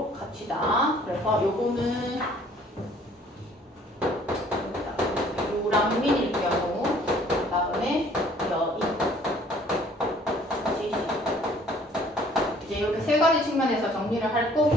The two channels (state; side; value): normal; both; correlation 0.57